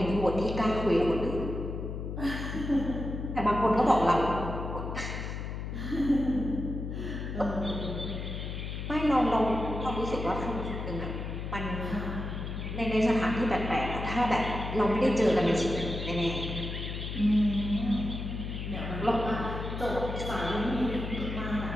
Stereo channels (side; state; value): left; noise; hum, 5 dB below the sound